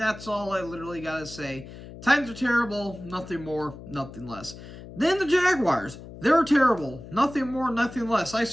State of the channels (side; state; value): left; noise; hum, 15 dB below the sound